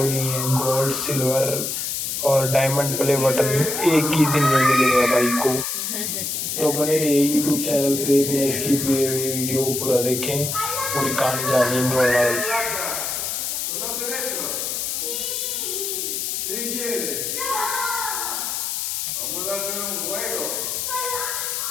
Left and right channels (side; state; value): left; noise; hiss, 2 dB below the sound